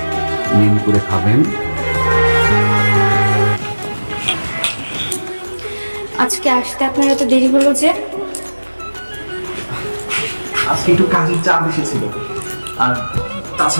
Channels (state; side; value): inverted; both; correlation -1.00